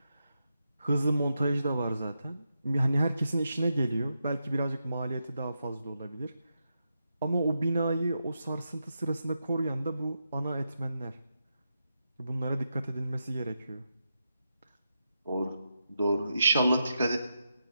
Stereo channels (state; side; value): inverted; both; correlation -0.86